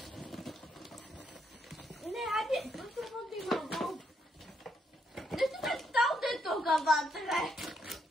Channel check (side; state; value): both; normal; correlation 0.76